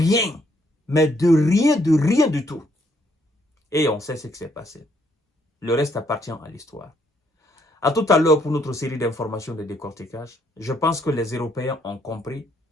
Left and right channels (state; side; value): normal; both; correlation 0.70